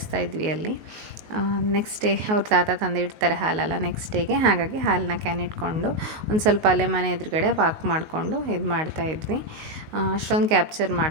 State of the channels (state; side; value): late; left; 19 ms